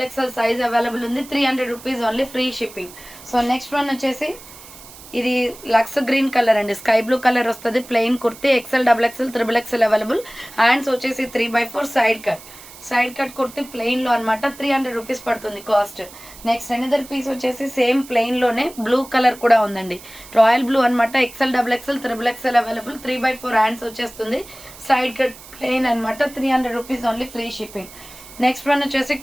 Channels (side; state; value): right; noise; hiss, 18 dB below the sound